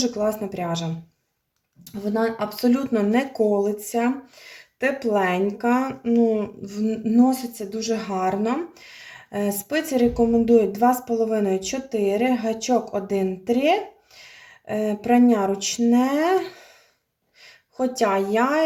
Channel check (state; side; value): identical; both; correlation 1.00